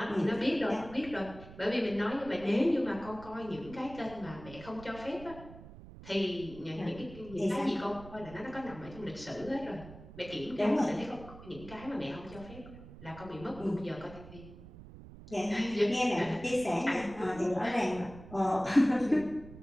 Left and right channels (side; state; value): right; noise; rumble, 16 dB below the sound